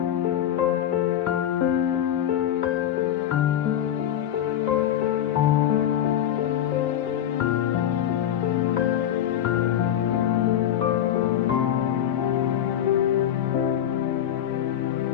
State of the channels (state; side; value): quieter; right; 10.7 dB